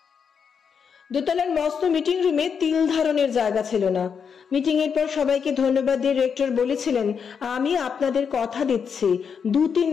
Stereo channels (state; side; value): quieter; right; 6.6 dB